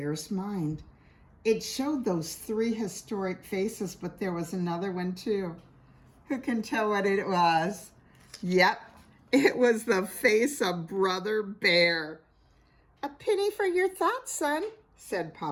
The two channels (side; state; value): both; identical; correlation 1.00